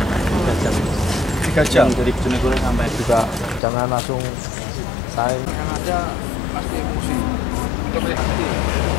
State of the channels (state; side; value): drops out; right; at 3.6 s